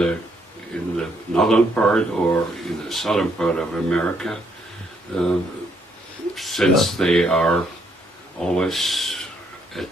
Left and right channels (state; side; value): normal; both; correlation 0.72